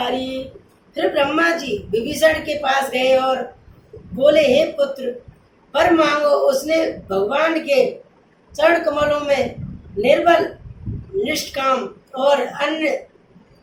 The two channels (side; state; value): both; identical; correlation 1.00